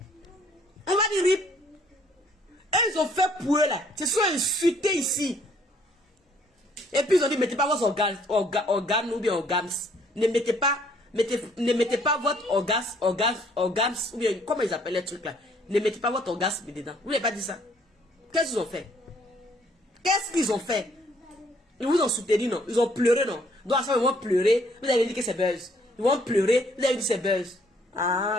On va dire rip. Et ils ont fait pour eux là. Ils se sont insultés ici. Et puis ils ont dit mettez pas vos organes ou bien organes. Ne mettez pas votre orgasme ou bien comment ils appellent les trucs là. Ne mettez pas votre orgasme dedans. Vous n'avez pas dit ça. Qu'est-ce qu'ils ont fait? Qu'est-ce qu'ils ont fait? Ils vous ont soutenu, non? Ils ont pleuré, non? Donc à ça, ils vont pleurer. Vous avez dit que c'est buzz. Ils vont pleurer. Vous avez dit que c'est buzz.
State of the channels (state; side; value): normal; both; correlation 0.64